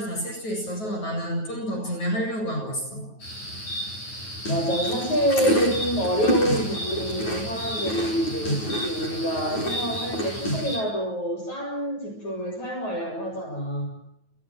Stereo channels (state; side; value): late; right; 9.3 ms